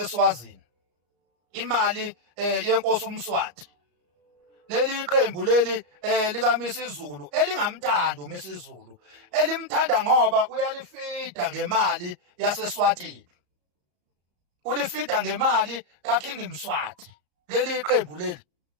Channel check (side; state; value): left; late; 34 ms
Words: imali yenkosi uMswati. Leli qembu leli lika Misizulu elingamthanda uMisizulu, elimthanda ngoba uyalifida ngemali yaseSwatini, ulifida ngemali kaKing Mswati. Leli qembu leli